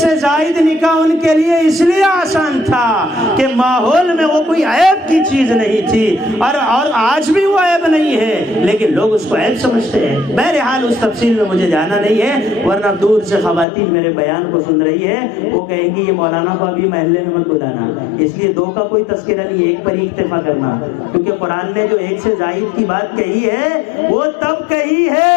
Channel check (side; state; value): right; drops out; at 13.7 s